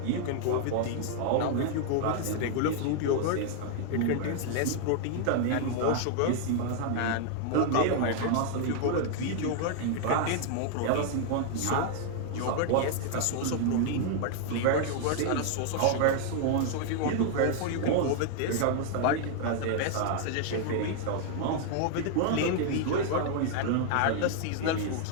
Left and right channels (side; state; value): both; different; correlation 0.00